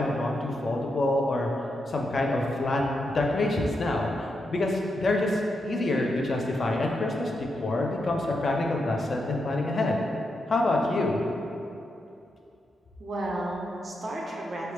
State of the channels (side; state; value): both; normal; correlation 0.84